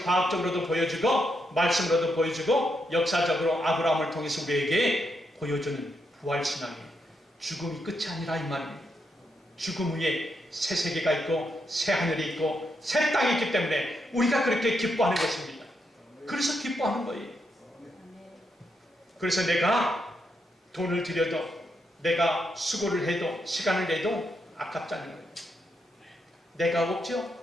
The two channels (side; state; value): both; normal; correlation 0.81